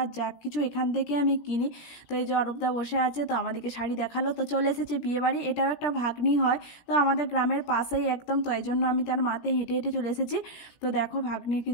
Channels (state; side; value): late; right; 17 ms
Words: যা কিছু এখান থেকে আমি কিনি। তো এই যে অরূপদা বসে আছে, তো আমাদেরকে শাড়ি দেখালো। তো চলে এসেছি বিয়ে বাড়ি। এটাও একটা ভাগ্নি হয়, তো আমাদের গ্রামের পাশেই একদম, তো এই জন্য আমি তার মাতে হেঁটে হেঁটে চলে এসেছি। তো দেখো ভাগ্নির